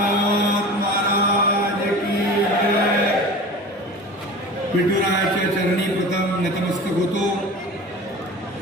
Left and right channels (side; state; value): both; normal; correlation 0.36